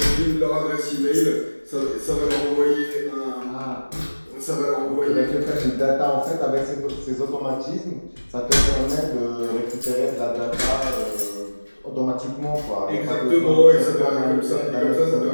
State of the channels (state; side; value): inverted; both; correlation -1.00